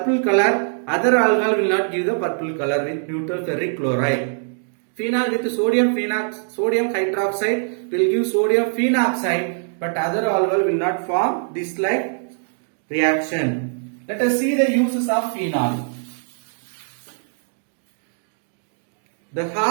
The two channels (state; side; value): silent; left; 64 dB below the other